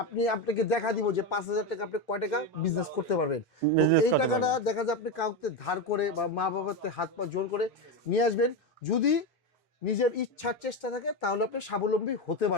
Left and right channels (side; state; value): both; normal; correlation 0.14